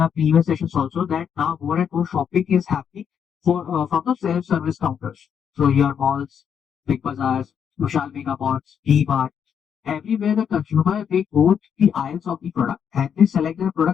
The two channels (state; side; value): quieter; right; 7.8 dB